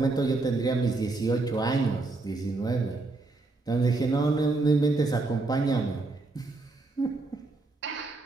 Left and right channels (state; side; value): quieter; left; 3.4 dB